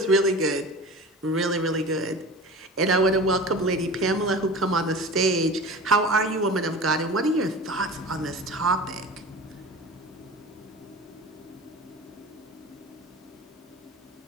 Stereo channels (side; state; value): both; normal; correlation 0.36